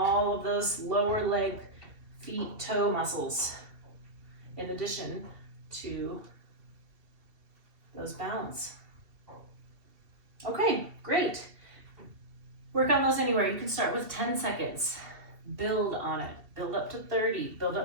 of those lower leg, feet, toe muscles, in addition to those balance. Okay, great. Work on those anywhere. You can start with 10 seconds. Build on it. Build up to 30. Build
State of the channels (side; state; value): left; late; 2.7 ms